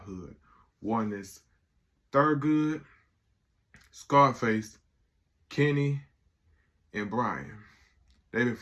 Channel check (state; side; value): identical; both; correlation 1.00